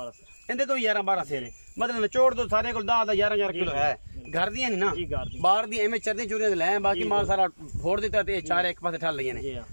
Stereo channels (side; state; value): both; inverted; correlation -1.00